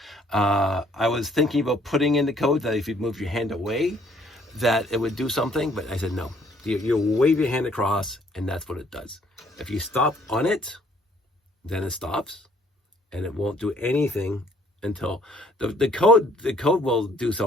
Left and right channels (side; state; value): both; normal; correlation 0.62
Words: I was thinking about putting in the code that if you move your hand away, that it would do something, but I said no. You wave your hand across, and that's what it does. If you stop on it, then it stops, and it won't do anything until the code will do